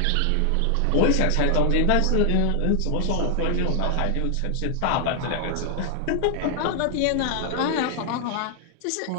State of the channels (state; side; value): different; both; correlation 0.00